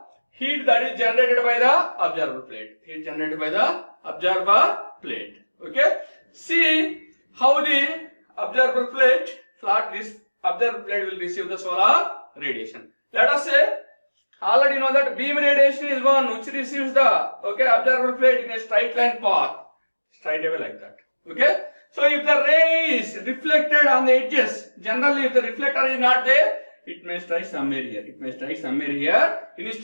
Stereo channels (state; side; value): inverted; both; correlation -1.00